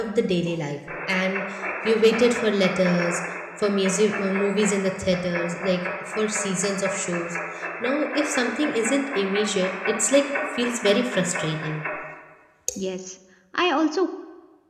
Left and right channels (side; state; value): both; identical; correlation 1.00